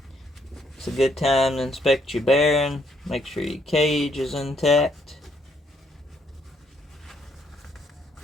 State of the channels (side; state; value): both; normal; correlation 0.71